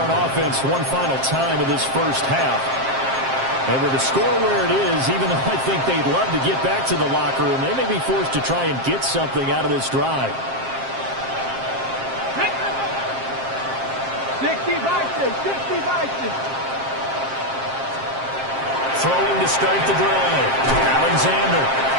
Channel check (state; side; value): late; left; 7.5 ms